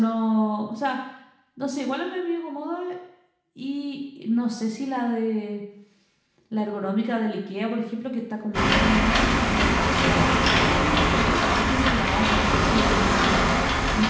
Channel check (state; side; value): identical; both; correlation 1.00